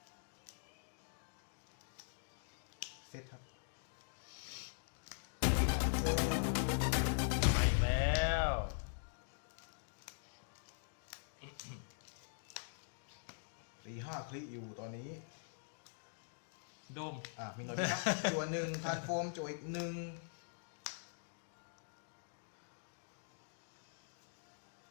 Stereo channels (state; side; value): silent; right; digital silence